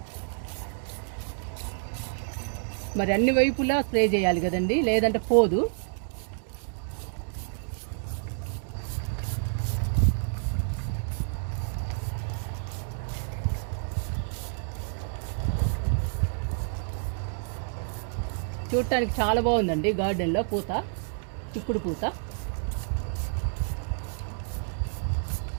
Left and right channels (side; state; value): left; silent; digital silence